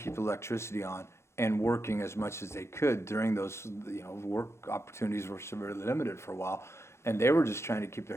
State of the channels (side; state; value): right; late; 0.13 ms